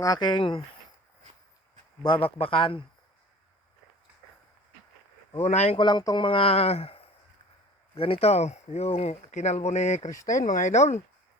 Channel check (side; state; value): both; normal; correlation 0.44